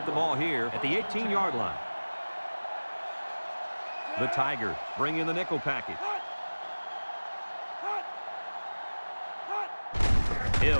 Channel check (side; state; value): both; inverted; correlation -1.00